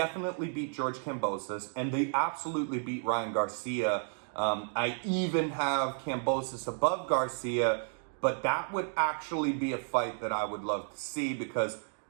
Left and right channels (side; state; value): left; silent; 56 dB below the other